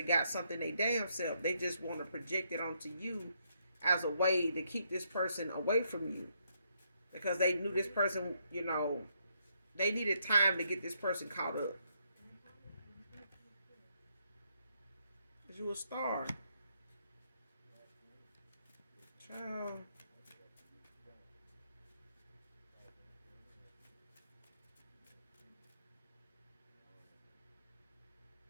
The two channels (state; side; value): inverted; both; correlation -0.75